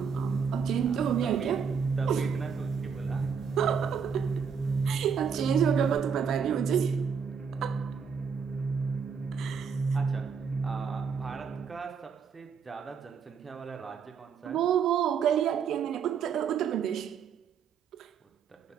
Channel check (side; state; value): left; quieter; 6.5 dB